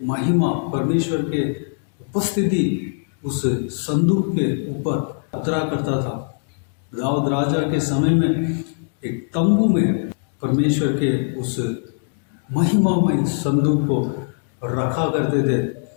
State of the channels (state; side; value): silent; right; digital silence